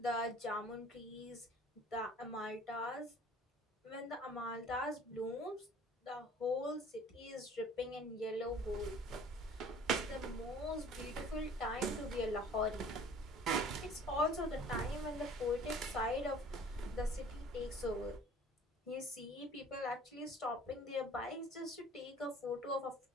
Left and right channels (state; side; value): normal; both; correlation 0.49